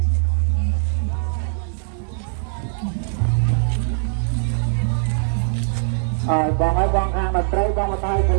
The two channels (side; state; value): left; silent; 55 dB below the other